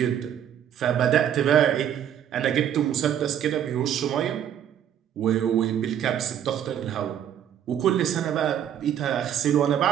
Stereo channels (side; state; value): left; quieter; 9.8 dB